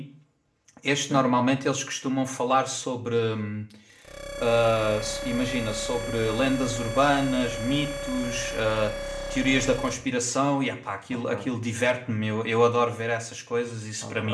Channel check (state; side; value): identical; both; correlation 1.00